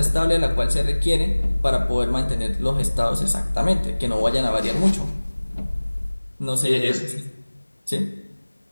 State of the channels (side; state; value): both; inverted; correlation -1.00